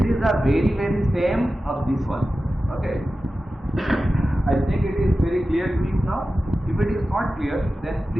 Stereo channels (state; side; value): normal; both; correlation 0.94